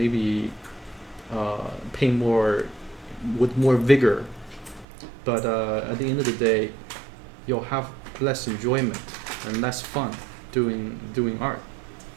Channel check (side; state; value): left; drops out; at 4.9 s